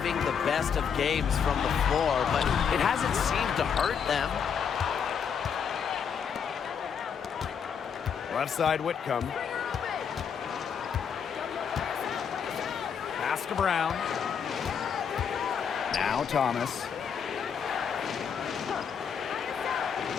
the best of games from the floor, but it hasn't seemed to hurt them. Left side Whitcomb. Pass to Brown. Now Thomas.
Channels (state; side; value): quieter; right; 7.2 dB